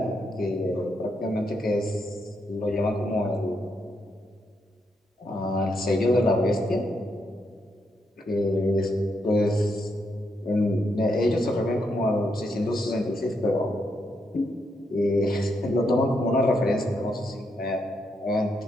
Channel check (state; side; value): normal; both; correlation 0.80